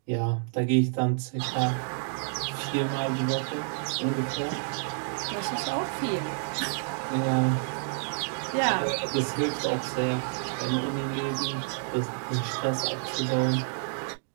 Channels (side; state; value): left; silent; digital silence